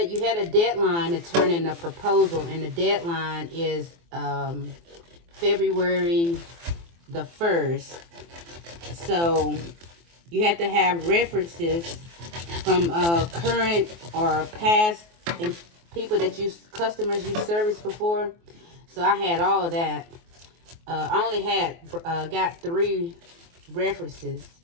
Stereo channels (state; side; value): late; left; 24 ms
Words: you had a deadline to turn in a proposal. And the deadline is February the 1st. So you have to have references from current or past people that customers you serviced before. So I had all of that. I only had got 3 references,